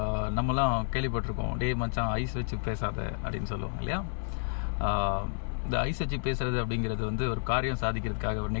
நம்மலாம் கேள்விப்பட்டிருக்கோம், டே மச்சான் ஐஸ் வச்சு பேசாத அப்படின்னு சொல்லுவாங்க இல்லையா. இந்த ஐஸ் வச்சு பேசுறது அப்படிங்கிறது வந்து ஒரு காரியம் சாதிக்கிறதுக்காக ஒரு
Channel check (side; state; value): right; silent; 58 dB below the other